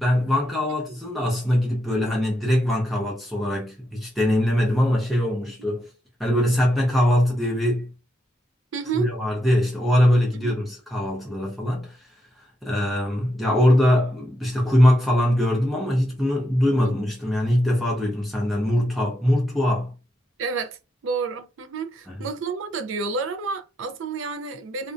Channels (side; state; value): both; normal; correlation 0.83